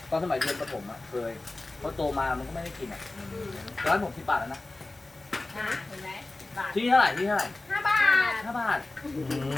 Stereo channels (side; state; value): right; quieter; 3.0 dB